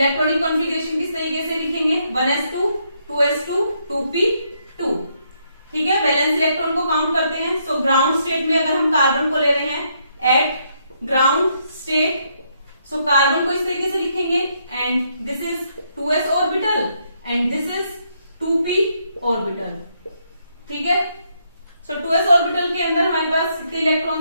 कॉन्फ़िगरेशन किस तरीके से लिखेंगे? 1s2 2s2 2p2। ठीक है, वैलेंस इलेक्ट्रॉन को काउंट करते हैं। सो ग्राउंड स्टेट में अगर हम कार्बन को ले रहे हैं eight ground state, so carbon को इस तरीके से लिखेंगे and this is 2s orbital and this is 2p orbital. ठीक है, सो 2s ऑर्बिटल के अंदर हमारे पास कितने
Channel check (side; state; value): both; inverted; correlation -0.75